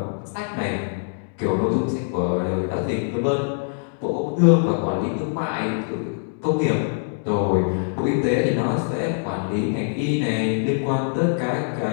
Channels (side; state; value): right; silent; digital silence